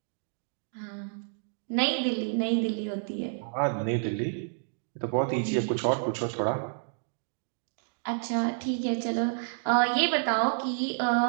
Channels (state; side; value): silent; left; digital silence